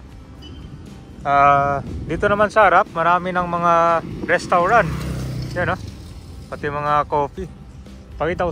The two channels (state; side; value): identical; both; correlation 1.00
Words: Dito naman sa harap, marami ng mga restaurant. Yan o. Pati mga coffee. Pakita ko